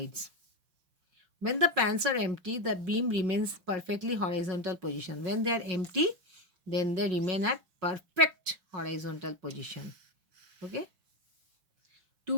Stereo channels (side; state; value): left; late; 5.4 ms